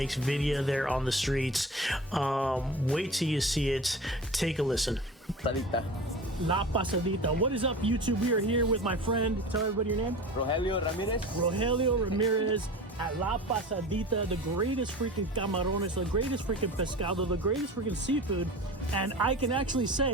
video there on the streets. Wait till you see it. Take a listen. Pasadita. La Pasadita. What is up, YouTube? We are here with my friend. Tell everybody your name. Rogelio Ramirez. Rogelio Ramirez at La Pasadita, the greatest freaking camarones, the greatest freaking pescado, the greatest freaking seafood. And I can actually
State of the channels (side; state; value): both; normal; correlation 0.35